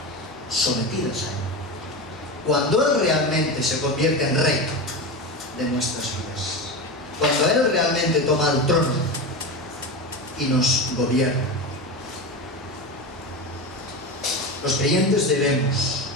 sometidas a Él. Cuando Él realmente se convierte en Rey de nuestras vidas, cuando Él realmente toma el trono y nos gobierna. Los creyentes debemos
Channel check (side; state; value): both; normal; correlation 0.22